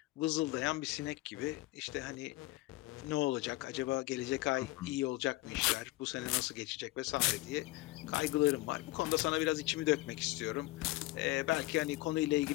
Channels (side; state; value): right; quieter; 19.4 dB